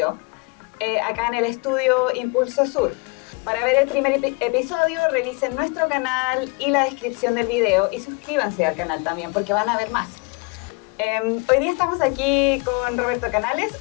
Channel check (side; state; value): right; quieter; 29.7 dB